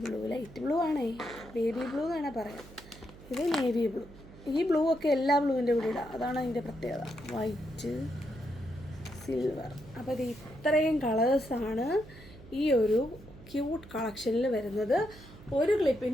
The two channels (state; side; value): noise; right; hum, 19 dB below the sound